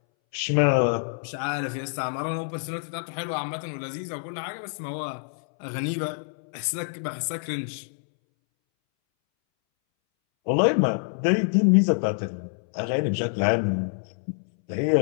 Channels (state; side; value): silent; right; 61 dB below the other